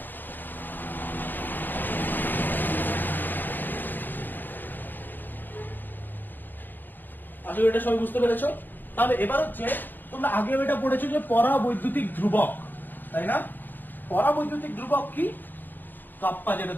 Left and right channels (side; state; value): right; late; 0.090 ms